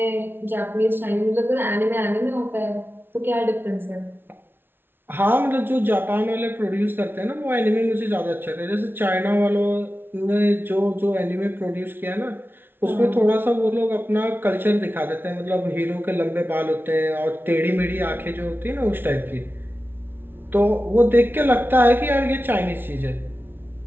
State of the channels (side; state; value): left; late; 0.10 ms